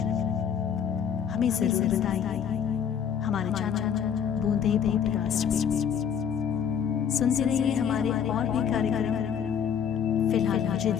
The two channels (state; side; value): quieter; right; 7.9 dB